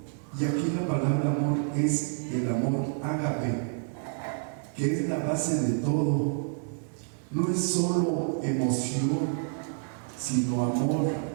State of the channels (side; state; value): left; silent; 59 dB below the other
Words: Y aquí la palabra amor es el amor ágape, que es la base de todo. No es solo emoción, sino amor